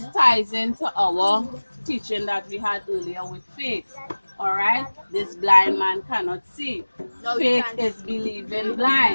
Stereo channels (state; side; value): inverted; both; correlation -1.00